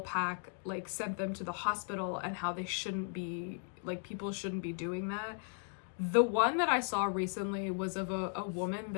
like sent them to the hospital and how they shouldn't be, like people shouldn't be doing that. The one that I saw recently was of a woman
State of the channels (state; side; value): silent; right; 53 dB below the other